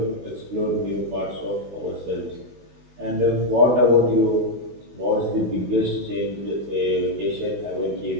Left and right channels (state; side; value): late; left; 16 ms